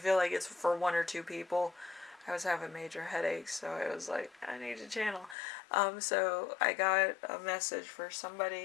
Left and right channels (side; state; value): right; drops out; at 5.4 s